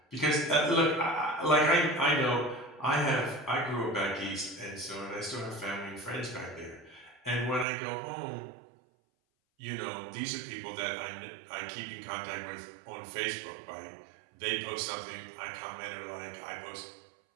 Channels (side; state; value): left; drops out; at 7.7 s